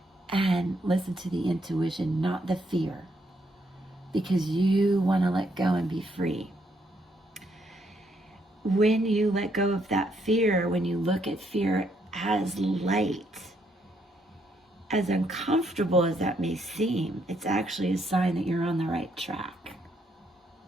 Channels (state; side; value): normal; both; correlation 0.74